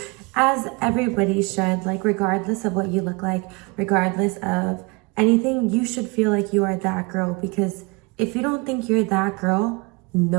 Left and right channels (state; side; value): quieter; left; 27.7 dB